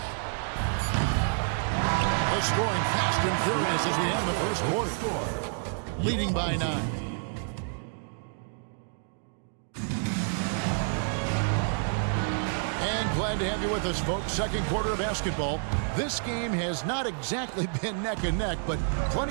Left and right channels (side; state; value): left; silent; digital silence